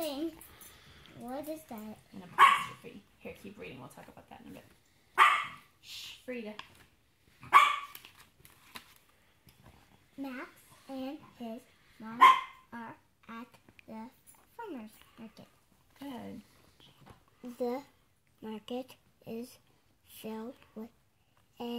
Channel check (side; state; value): both; identical; correlation 1.00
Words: What is that? An apostrophe. Here, keep reading. We'll talk about that in a bit. Shh, Frida. Max and his mom are at the farmer's market. Good. The market is filled with